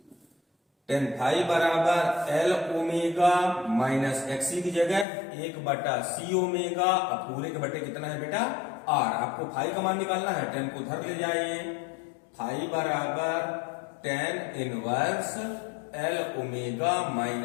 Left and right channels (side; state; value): right; drops out; at 5.1 s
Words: बराबर L ओमेगा माइनस XC की जगह 1/C ओमेगा, अब पूरे के बटे कितना है बेटा? R। आपको फाई का मान निकालना है, tan को उधर ले जाइए। फाई बराबर tan inverse L omega